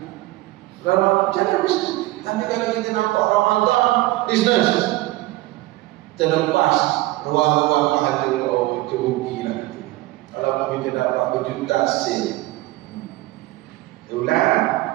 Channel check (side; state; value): left; quieter; 18.4 dB